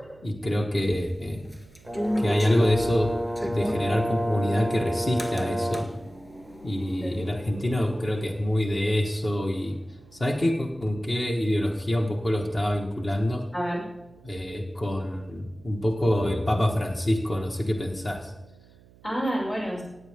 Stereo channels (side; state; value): right; noise; hum, 26 dB below the sound